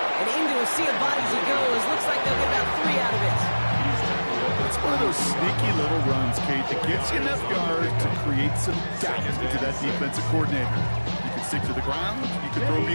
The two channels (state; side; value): inverted; both; correlation -1.00